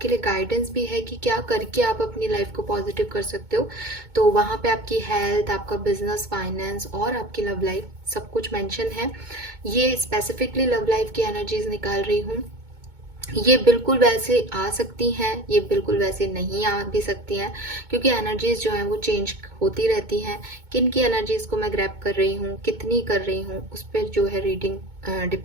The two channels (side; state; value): left; late; 2.2 ms